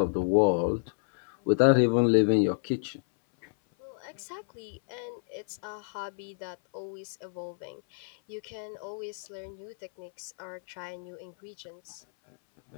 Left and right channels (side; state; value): right; silent; 58 dB below the other